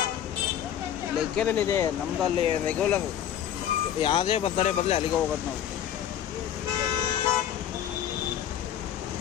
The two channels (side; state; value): right; quieter; 10.2 dB